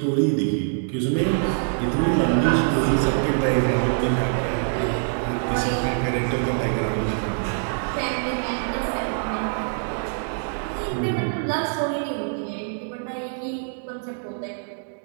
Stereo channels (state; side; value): silent; left; digital silence